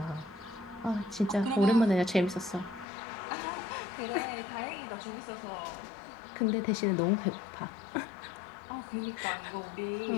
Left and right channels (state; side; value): drops out; right; at 2.9 s